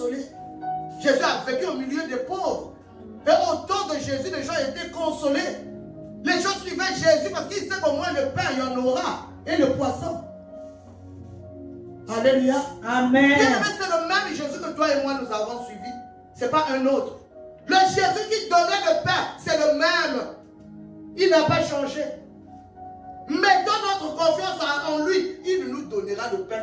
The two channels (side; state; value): both; identical; correlation 1.00